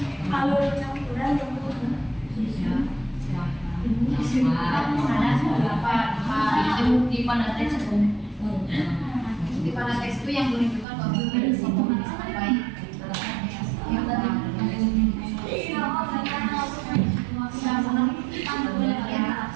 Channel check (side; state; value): left; drops out; at 10.9 s